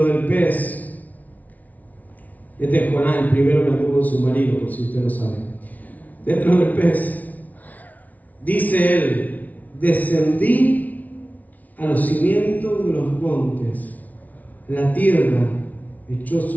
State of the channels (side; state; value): right; late; 0.074 ms